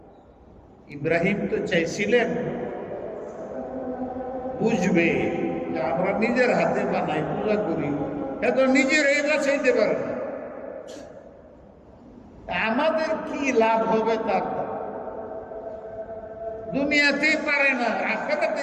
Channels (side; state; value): both; identical; correlation 1.00